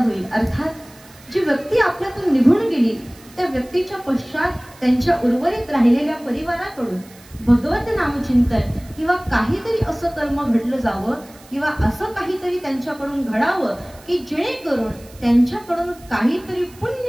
अर्थात जी व्यक्ती आपल्यातून निघून गेली त्या व्यक्तीच्या पश्चात त्यांच्या उर्वरित राहिलेल्या परिवाराकडून भगवत नामचिंतन किंवा काहीतरी असं कर्म घडलं जावं किंवा असं काहीतरी त्यांच्याकडून घडावं की जेणेकरून त्यांच्याकडून काहीतरी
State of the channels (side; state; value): right; noise; hiss, 24 dB below the sound